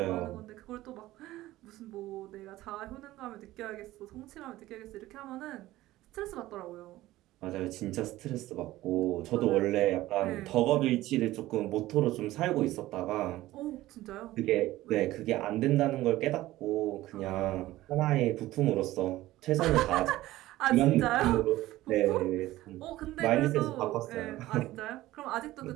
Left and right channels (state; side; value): quieter; left; 16.4 dB